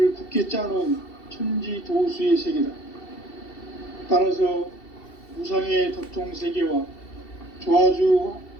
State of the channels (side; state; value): right; late; 2.7 ms